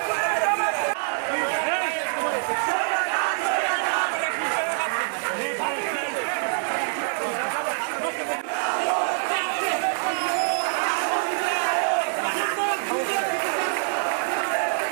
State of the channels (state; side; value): silent; left; digital silence